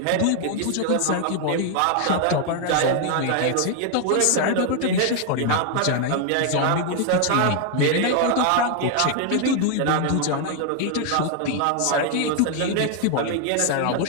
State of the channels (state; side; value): different; both; correlation 0.00